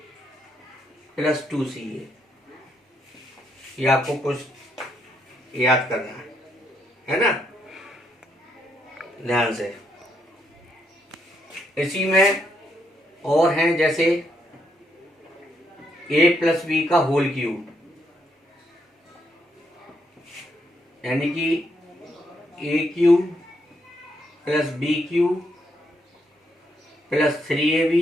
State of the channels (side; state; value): both; normal; correlation 0.76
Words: plus 2ca। ये आपको कुछ याद करना है ना, ध्यान से। इसी में और हैं जैसे a प्लस बी का होल क्यूब यानी कि a³ plus b³ plus 3ab